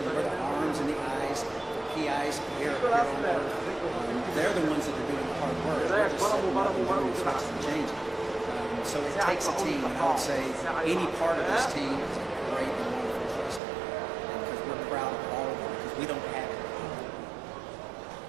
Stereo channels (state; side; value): drops out; left; at 13.6 s